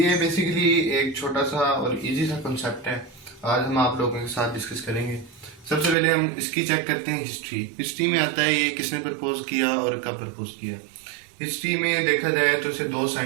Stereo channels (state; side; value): drops out; left; at 6.0 s